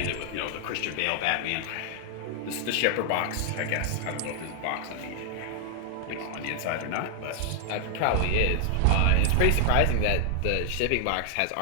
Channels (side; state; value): both; different; correlation 0.00